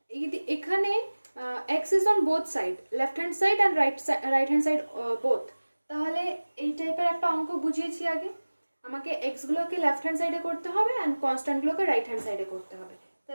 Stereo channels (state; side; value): inverted; both; correlation -1.00